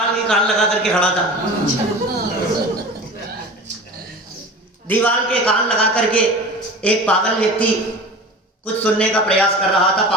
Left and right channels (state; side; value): normal; both; correlation 0.35